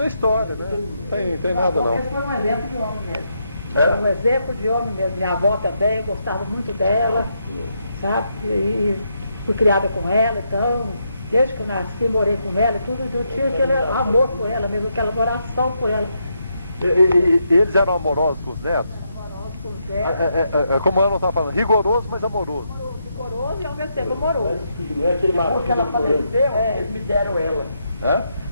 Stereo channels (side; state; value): both; inverted; correlation -0.80